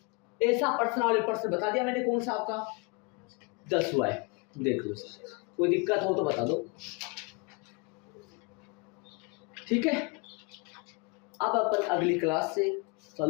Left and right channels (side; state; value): right; quieter; 30.4 dB